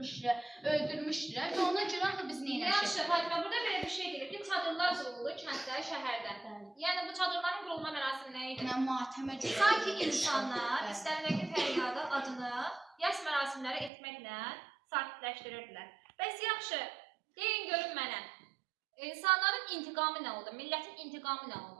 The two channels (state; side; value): drops out; left; at 13.9 s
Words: və ona görə axı biz nə eləmişik? Yaxşı, Fatimə, burada belə bir şey deyir ki, çadırlar qurulur kənddə, şəhərdə. Yəni bu çadırların qurulma mərasimi nə idi? Mən matəmə görə. Sanki insanlar istərindəki fəryadı, adını, yas mərasimləri etməklə sakitləşdirirdilər. Bəs yaxşı, deyin görün mənə. İnsanların intiqamı nə oldu? Millətin intiqamı nə